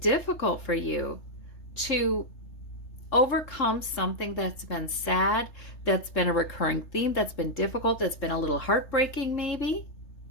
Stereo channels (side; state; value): right; late; 3.3 ms